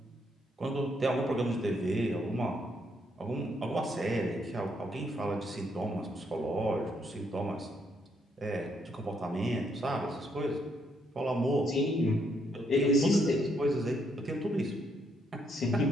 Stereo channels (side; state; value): both; normal; correlation 0.74